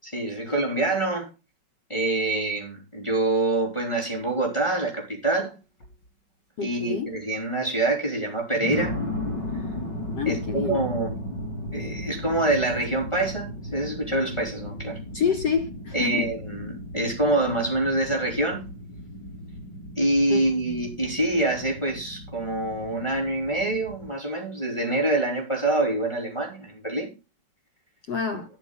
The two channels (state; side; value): late; right; 5.3 ms